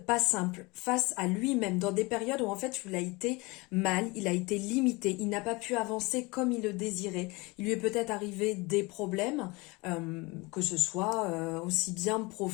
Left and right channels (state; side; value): quieter; right; 25.0 dB